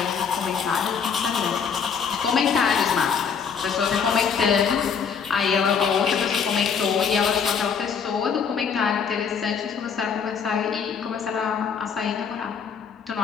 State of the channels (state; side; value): quieter; right; 6.6 dB